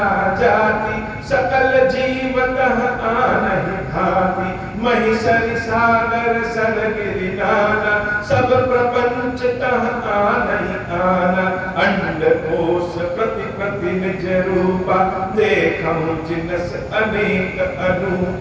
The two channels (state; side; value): identical; both; correlation 1.00